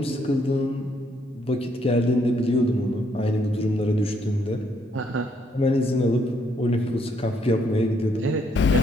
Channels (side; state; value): both; normal; correlation 0.72